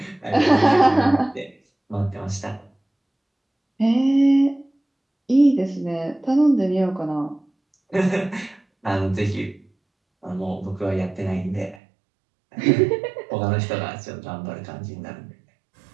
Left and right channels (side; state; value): left; drops out; at 11.8 s